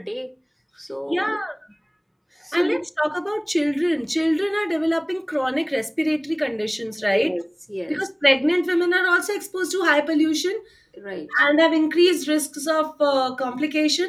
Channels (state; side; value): identical; both; correlation 1.00